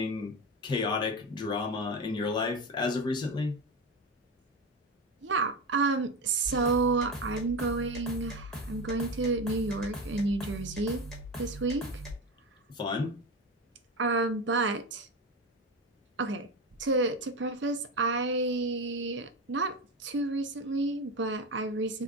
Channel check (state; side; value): normal; both; correlation 0.21